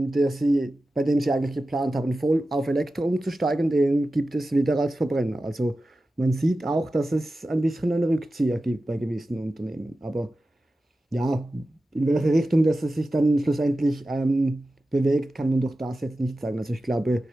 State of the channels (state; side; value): normal; both; correlation 0.94